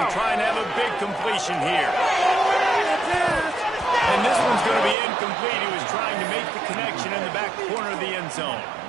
trying to have a big completion here. And this one's going to be incomplete. He was trying to make the connection in the back corner of the end zone.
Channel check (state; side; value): drops out; left; at 5.0 s